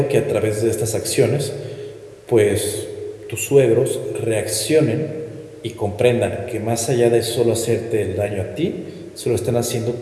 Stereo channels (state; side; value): identical; both; correlation 1.00